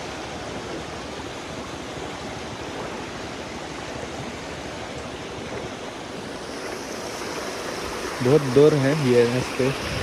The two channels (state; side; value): identical; both; correlation 1.00